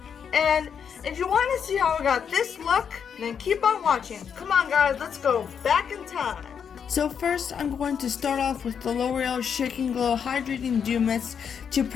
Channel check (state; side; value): quieter; right; 7.3 dB